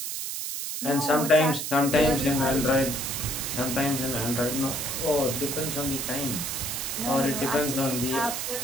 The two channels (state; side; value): noise; right; hiss, 4 dB below the sound